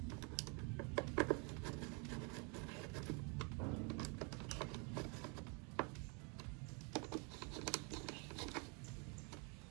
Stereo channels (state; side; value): quieter; left; 34.8 dB